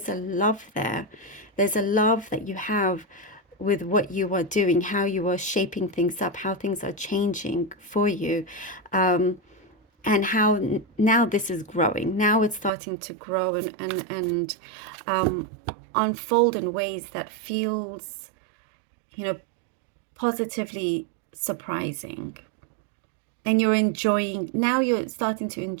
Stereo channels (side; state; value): left; drops out; at 12.7 s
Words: a love there. There's a love that you have with what you are doing, how you are shaping things up, how things are changing for you. And how now this is growing. Now it's starting to grow and unfold in ways that feels, you know, positively surprising. And you're enjoying, now you're starting to